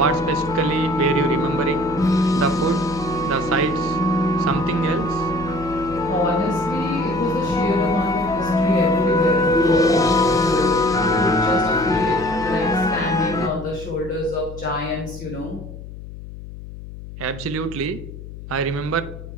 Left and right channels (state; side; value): noise; left; hum, 13 dB below the sound